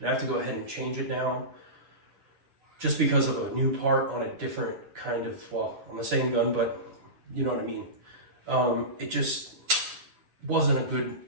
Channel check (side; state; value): left; late; 9.9 ms